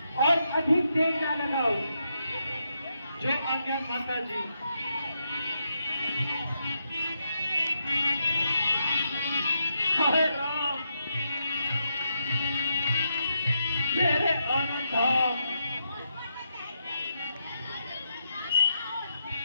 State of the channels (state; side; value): inverted; both; correlation -0.83